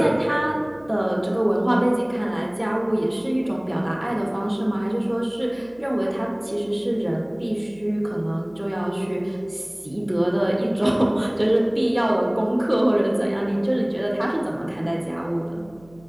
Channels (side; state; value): right; noise; hum, 26 dB below the sound